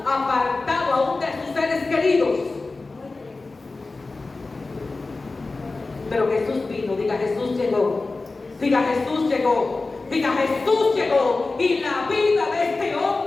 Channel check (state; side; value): quieter; right; 3.6 dB